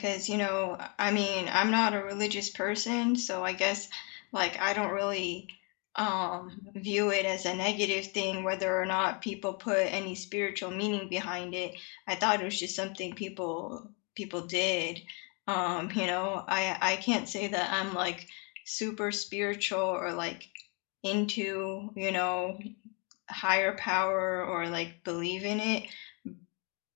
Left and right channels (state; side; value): quieter; right; 34.6 dB